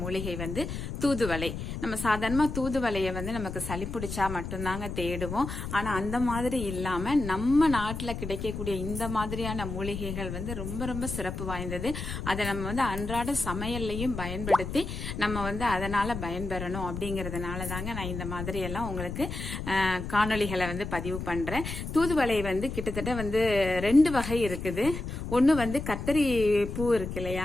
வந்து தூதுவளை. நம்ம சாதாரணமாக தூதுவளையை வந்து நமக்கு சளி பிடிச்சா மட்டும்தாங்க தேடுவோம். ஆனால் அந்த மாதிரி இல்லாமல் நம்ம நாட்டில் கிடைக்கக்கூடிய இந்த மாதிரியான மூலிகைகள் வந்து ரொம்ப ரொம்ப சிறப்பு வாய்ந்தது. அதை நம்ம வந்து அன்றாட சமையல்லையும் பயன்படுத்தி நம்ம வந்து அதனால பயன்பெறணும் அப்படிங்கறதுனால தாங்க நான் இந்த மாதிரி எல்லாம் உங்களுக்கு காணொளிகளை வந்து பதிவு பண்றேன். தூதுவளை வந்து கிட்டத்தட்ட வந்து 2 வகை இருக்குது. ஒன்னு வந்து கத்தரி பூ இருக்கு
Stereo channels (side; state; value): left; noise; rumble, 6 dB below the sound